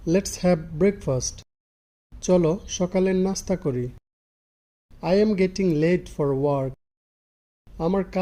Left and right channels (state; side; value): identical; both; correlation 1.00